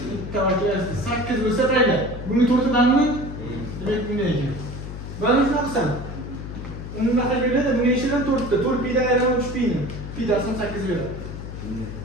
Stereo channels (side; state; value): left; noise; hum, 9 dB below the sound